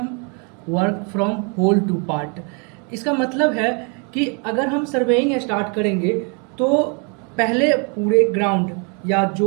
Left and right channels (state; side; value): quieter; left; 36.0 dB